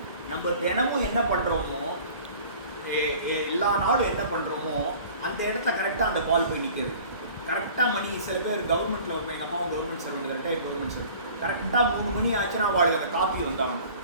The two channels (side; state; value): both; inverted; correlation -0.47